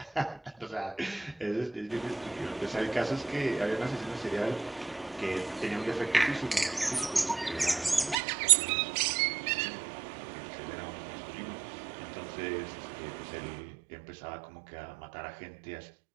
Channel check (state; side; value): drops out; left; at 8.2 s